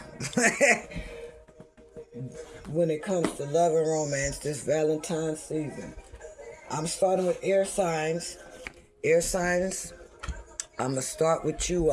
When it comes to love and romance this Valentine's season. I'm starting with air signs. Air signs, I'm going to start with you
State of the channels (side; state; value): both; identical; correlation 1.00